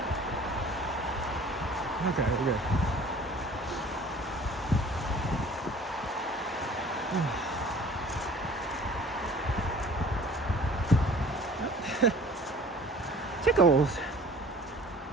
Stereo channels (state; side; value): normal; both; correlation 0.48